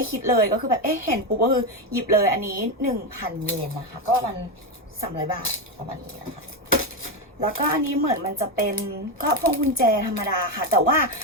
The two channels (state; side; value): normal; both; correlation 0.11